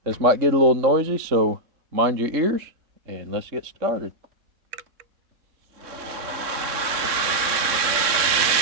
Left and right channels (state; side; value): late; left; 3.6 ms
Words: this might get a little noisy, so mind your ears and let's get started.